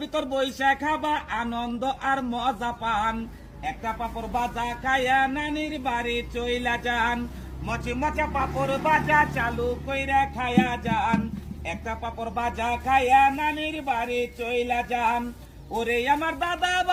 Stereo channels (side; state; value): both; identical; correlation 1.00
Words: ভিতর বইসা খাবা আনন্দ আর মজা পান। একটা পাপড় বাজা খায়া নানির বাড়ি চইলা যান, মচমচা পাপড় বাজা চালু কইরা খায়া যান, একটা পাপড় বাজা খায়া নানির বাড়ি চইলা যান। ওরে আমার দাদা